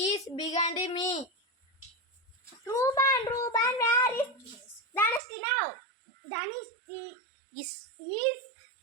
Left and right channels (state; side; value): drops out; left; at 5.2 s